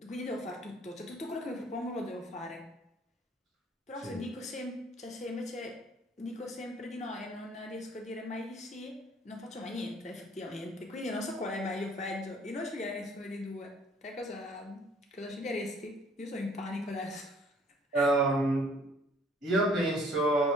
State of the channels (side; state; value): both; normal; correlation 0.58